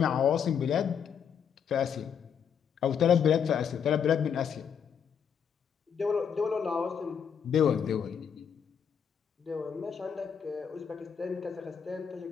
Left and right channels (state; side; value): quieter; right; 7.5 dB